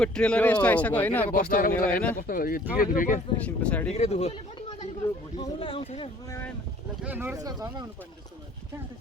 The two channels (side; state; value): both; normal; correlation 0.55